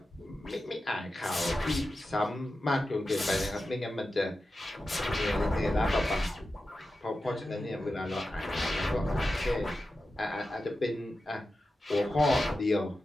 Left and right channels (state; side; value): normal; both; correlation 0.92